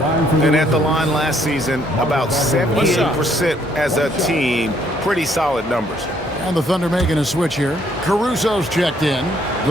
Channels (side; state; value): both; normal; correlation 0.67